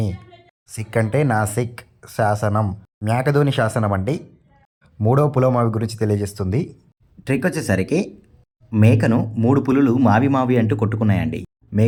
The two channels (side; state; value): both; identical; correlation 1.00